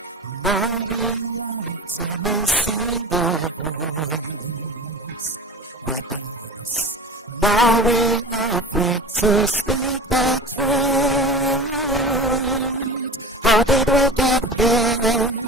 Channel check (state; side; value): normal; both; correlation 0.33